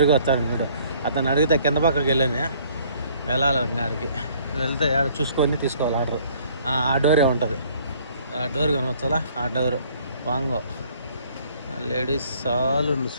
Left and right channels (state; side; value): inverted; both; correlation -0.59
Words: వస్తాను చూడు. అతను అడిగితే కింద పక్కకి వెళ్ళాలి ఇంకాడికి వెళ్తే ఆడ చూసుకొని తీసుకోవాలి ఆర్డర్. ఆ డోరే ఉంటుంది, ఆ డోర్ కనవచ్చాలా, ఆ డోరు వాంగో లేడీస్ సాలూన్.